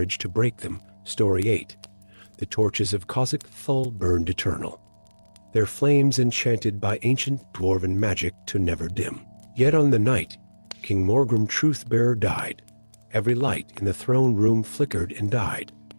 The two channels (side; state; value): both; inverted; correlation -1.00